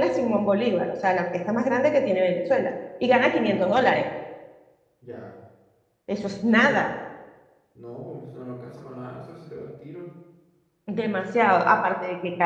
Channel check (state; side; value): identical; both; correlation 1.00